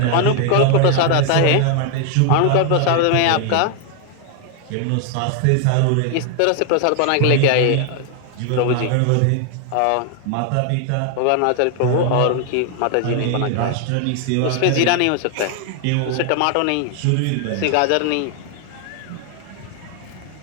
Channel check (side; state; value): both; different; correlation 0.00